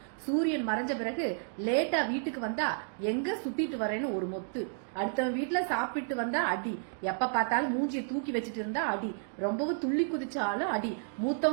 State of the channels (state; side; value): silent; left; digital silence